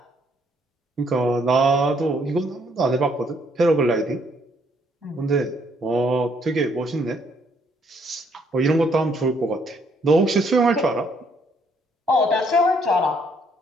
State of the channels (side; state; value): both; normal; correlation 0.68